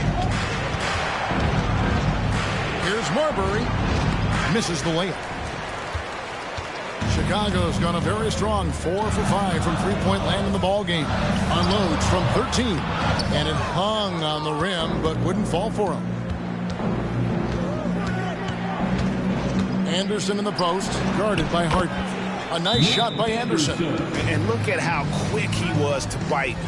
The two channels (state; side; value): identical; both; correlation 1.00